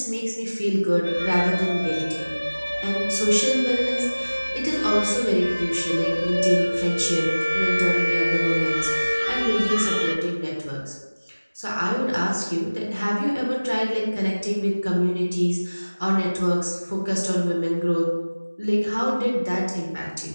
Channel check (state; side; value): inverted; both; correlation -1.00